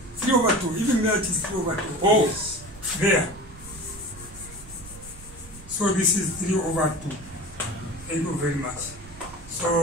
3 over 2. Even there it is 3 over 2. Oh, Yes. there. So this is 3 over 2. Thank you very much.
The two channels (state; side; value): noise; right; rumble, 18 dB below the sound